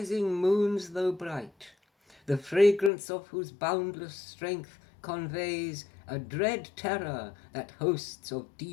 moons though bright, the fragrance of whose boundless strength conveys a dread terror that hosts of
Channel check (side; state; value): right; drops out; at 2.9 s